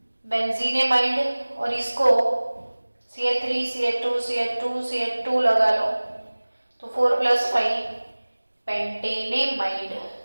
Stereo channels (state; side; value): inverted; both; correlation -1.00